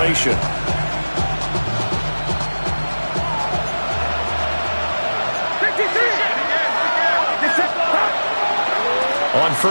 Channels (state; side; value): inverted; both; correlation -1.00